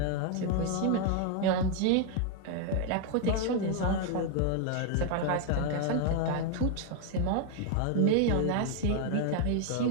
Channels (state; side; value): different; both; correlation 0.01